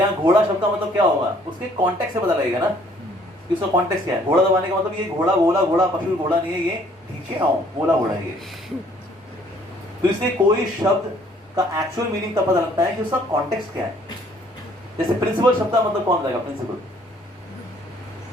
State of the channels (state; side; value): normal; both; correlation 0.61